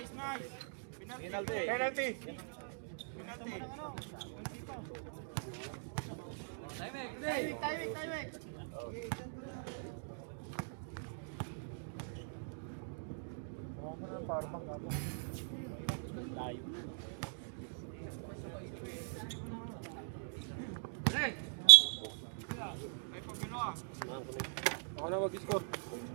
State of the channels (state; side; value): silent; left; digital silence